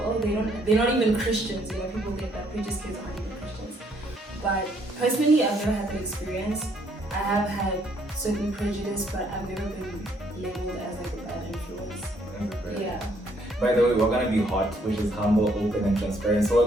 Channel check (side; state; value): both; normal; correlation 0.68